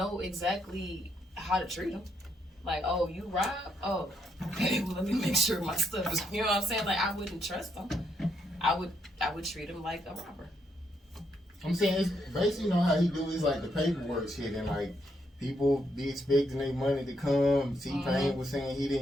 exactly how to treat them. Like, oh, you rob? Oh, okay. Well, let me make sure my stuff is. You know what I'm saying? Like, I wouldn't trust them. I would treat them like a robber. I'm saying it's basically how he do is like the paperwork shit, and like people be expecting their money to come. T-Pain was saying he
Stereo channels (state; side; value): normal; both; correlation 0.77